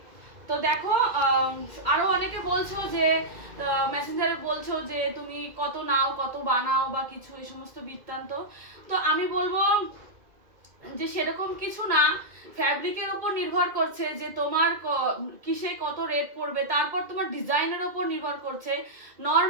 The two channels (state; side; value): late; left; 2.4 ms